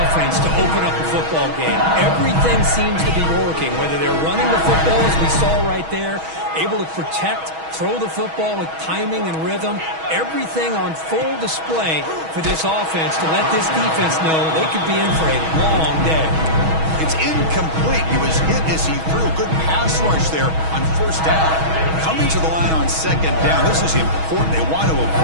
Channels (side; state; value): left; late; 6.2 ms